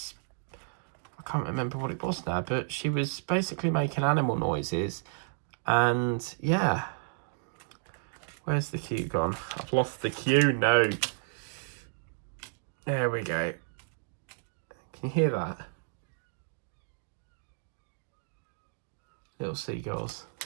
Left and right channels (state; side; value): silent; left; digital silence